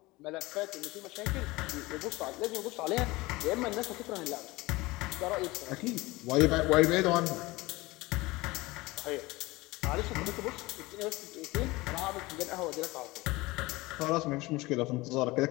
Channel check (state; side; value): quieter; right; 21.3 dB